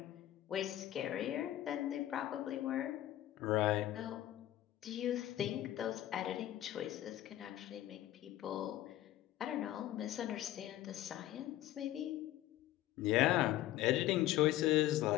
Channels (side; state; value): right; quieter; 13.9 dB